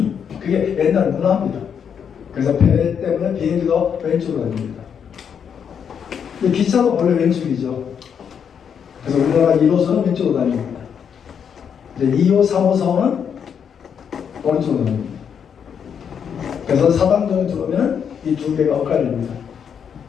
그게 옛날 문화입니다. 그래서 배 때문에 비행기도 왼쪽으로 다닙니다. 근데 기차도 원래 왼쪽이죠. 그래서 우리나라 1호선은 왼쪽으로 다닙니다. 이제 2호, 3호선은 오른쪽으로 다닙니다. 그래서 사당정에 들어오면 이 두 개가 엇갈립니다.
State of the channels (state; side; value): quieter; right; 7.6 dB